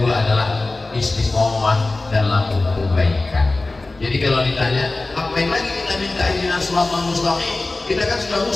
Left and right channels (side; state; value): right; quieter; 3.2 dB